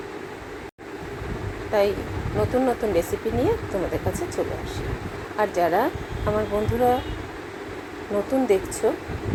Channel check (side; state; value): both; identical; correlation 1.00